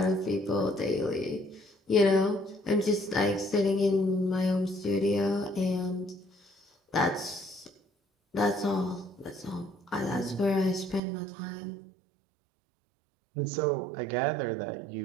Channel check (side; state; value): left; drops out; at 11.0 s